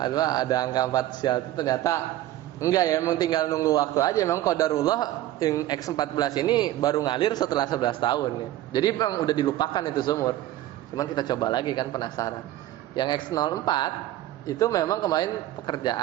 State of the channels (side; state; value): left; quieter; 14.3 dB